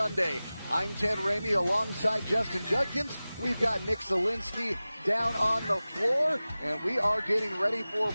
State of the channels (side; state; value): both; inverted; correlation -0.97